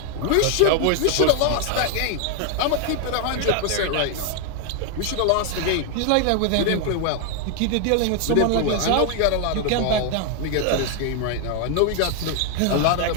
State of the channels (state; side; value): different; both; correlation 0.00